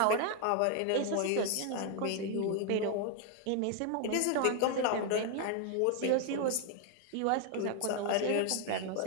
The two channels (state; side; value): different; both; correlation 0.00